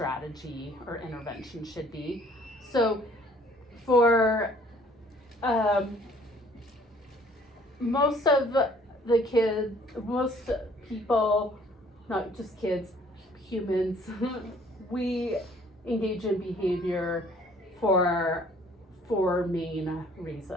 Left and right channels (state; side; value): normal; both; correlation 0.57